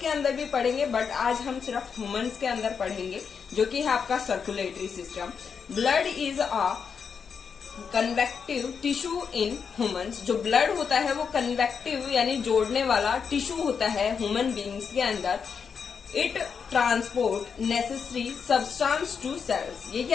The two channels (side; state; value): right; quieter; 6.3 dB